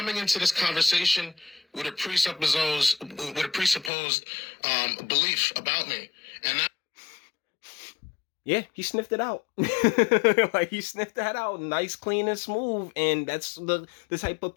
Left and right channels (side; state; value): right; drops out; at 3.9 s